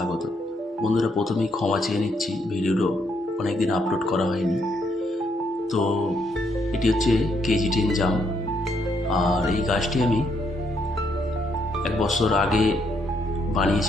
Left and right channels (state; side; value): normal; both; correlation 0.74